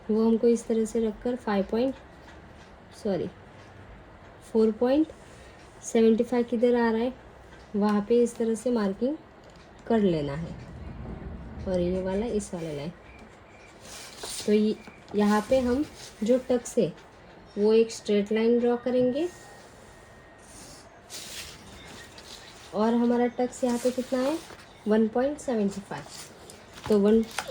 वो हमको इस तरह से रखकर 4.75 किधर आ रहा है वहाँ पे इस तरह से मार्किंग कर लेना है। और ये वाला इस वाले लाइन, तो यहाँ पे हम जो टक्स है वो एक स्ट्रेट लाइन ड्रॉ करेंगे और हमारा टक्स यहाँ पे कितना है 1.75। तो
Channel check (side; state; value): both; identical; correlation 1.00